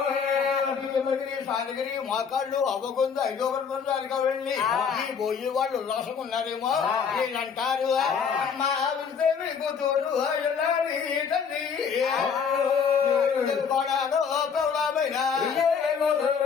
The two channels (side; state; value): right; quieter; 6.5 dB